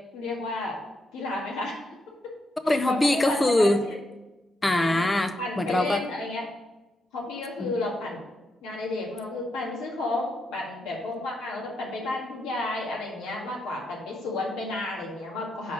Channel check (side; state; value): both; normal; correlation 0.82